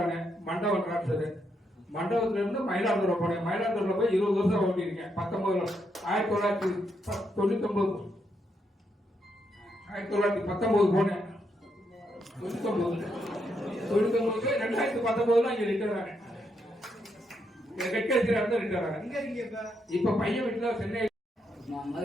ஆனேன். மண்டபம் டிரான்ஸ்ஃபர். மண்டபத்துல இருந்து மயிலாடுதுறை போனேன். மயிலாடுதுறை போய் 20 வருஷம் ஓட்டிருக்கேன். 1999 போனேன். 2019 இங்க ரிட்டர் ஆனேன். ரிட்டர் ஆனேன். இப்ப பையன் வீட்டுல சென்னை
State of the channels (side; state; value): both; normal; correlation 0.79